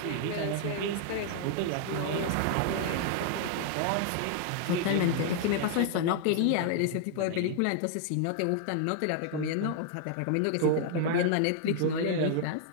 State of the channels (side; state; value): both; different; correlation 0.00